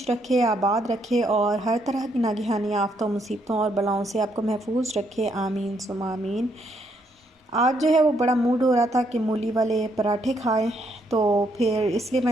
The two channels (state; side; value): normal; both; correlation 0.74